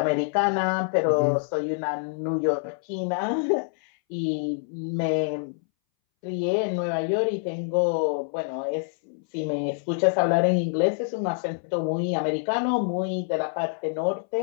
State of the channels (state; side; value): silent; right; 61 dB below the other